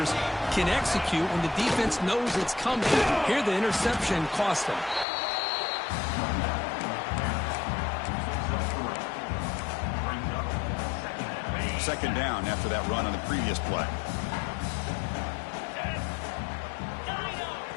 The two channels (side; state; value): right; drops out; at 5.1 s